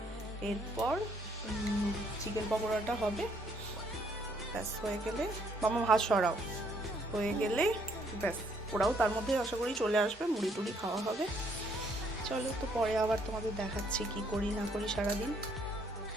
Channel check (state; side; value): normal; both; correlation 0.68